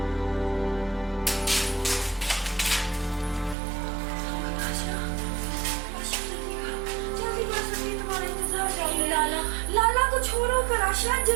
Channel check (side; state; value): left; drops out; at 3.6 s